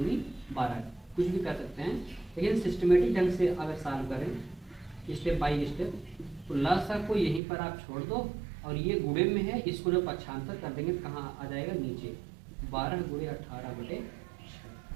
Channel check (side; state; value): left; drops out; at 7.4 s